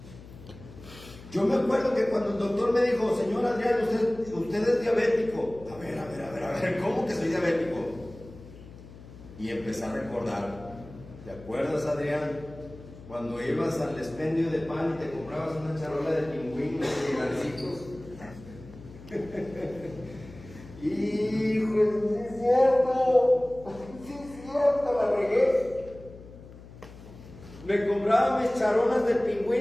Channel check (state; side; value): noise; left; hum, 18 dB below the sound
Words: Yo me acuerdo que cuando el doctor me dijo: señor Adrián, usted es diabético. A ver, ¿cómo que soy diabético? Y empecé a recordar. ¿Te acuerdas, Adrián? Cuando ibas al expendio de pan y te comprabas una charola de pingüinos y gancitos. Hijo, sí es cierto, la regué. Me compraba mis charolas de